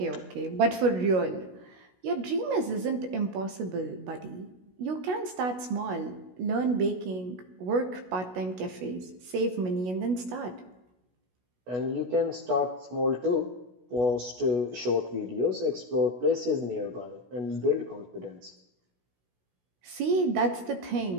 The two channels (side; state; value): left; late; 16 ms